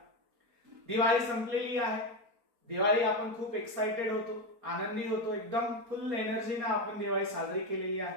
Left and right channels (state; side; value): late; left; 4.3 ms